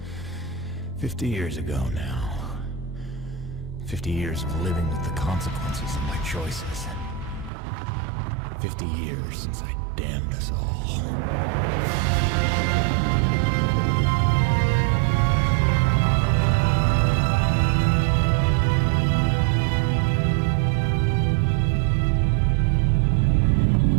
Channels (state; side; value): drops out; left; at 7.5 s